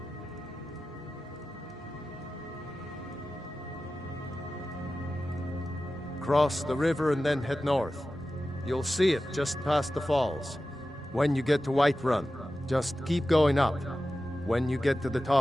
Cross the river and then head north. You'll see it just past the falls. When you get to Whiterun, just keep going up. When you get to the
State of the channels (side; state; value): both; normal; correlation 0.94